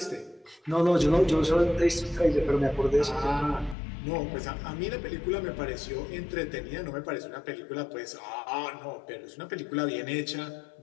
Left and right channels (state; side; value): drops out; right; at 3.8 s